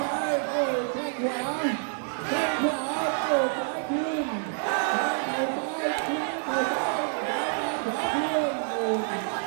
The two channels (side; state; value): left; silent; 60 dB below the other